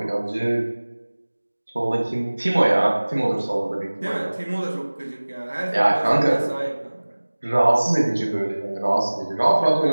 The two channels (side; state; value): both; inverted; correlation -1.00